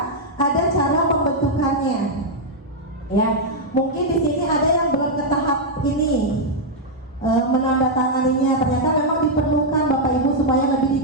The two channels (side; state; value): both; normal; correlation -0.03